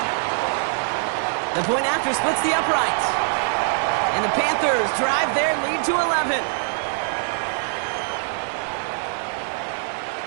The point after splits the uprights. And the Panthers drive their lead to 11.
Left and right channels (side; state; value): left; silent; 59 dB below the other